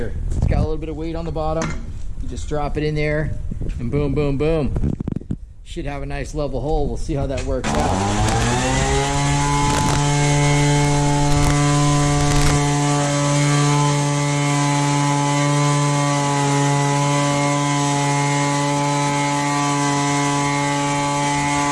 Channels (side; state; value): both; identical; correlation 1.00